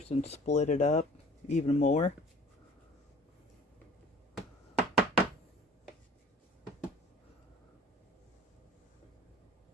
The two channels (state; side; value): normal; both; correlation 0.48